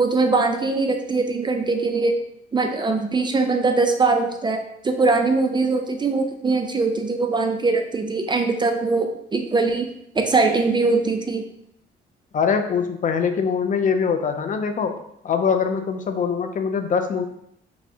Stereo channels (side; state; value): both; normal; correlation 0.49